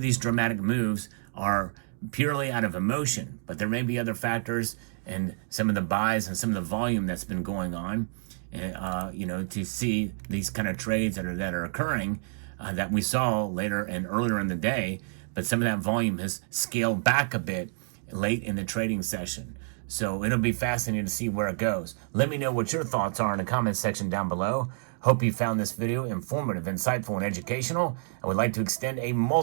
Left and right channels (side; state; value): left; silent; digital silence